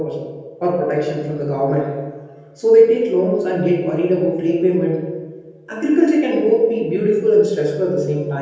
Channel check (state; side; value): identical; both; correlation 1.00